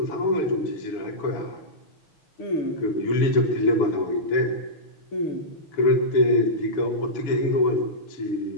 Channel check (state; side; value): late; right; 7.0 ms